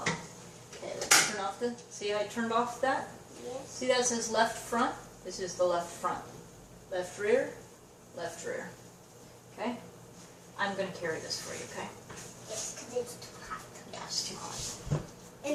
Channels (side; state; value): both; identical; correlation 1.00